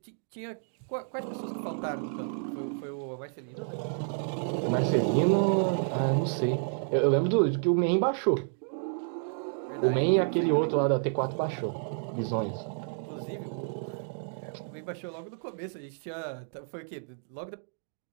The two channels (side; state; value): left; silent; digital silence